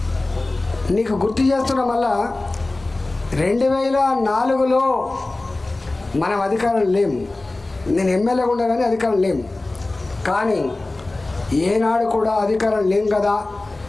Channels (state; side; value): quieter; right; 3.0 dB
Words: నీకు గుర్తు చేస్తున్నా, మళ్ళా 2004లో మనం అధికారం లేము. నేను ఎమ్మెల్యేగా ఉండగానే అధికారం లేము. కానీ ఏనాడు కూడా అధికారం లేం కదా,